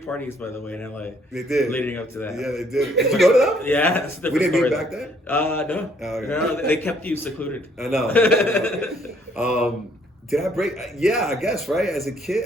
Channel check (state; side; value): normal; both; correlation 0.65